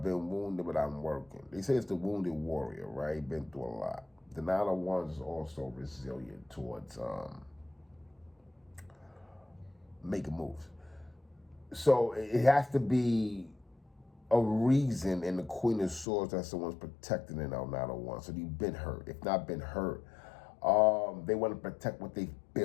been wounded, but I'm working. They say it's the wounded warrior, right? Been through a lot. The Nine of Wands is also resilient towards making moves. So it has to be a reason in the Queen of Swords that someone's protecting in our Nine of Wands. So you've been hurt. If not been hurt, they want to protect what they've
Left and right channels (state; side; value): drops out; right; at 16.1 s